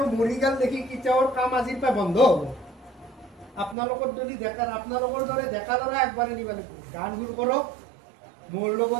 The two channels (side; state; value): left; drops out; at 3.8 s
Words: মৰি গেল দেখি কেতিয়াও কাম আজিৰ পৰা বন্ধ হ'ব আপোনালোকৰ যদি আপোনালোকৰ দৰে ডেকা ল'ৰা আগবাঢ়ি নিব লাগিব গান সুৰ কৰক মোৰ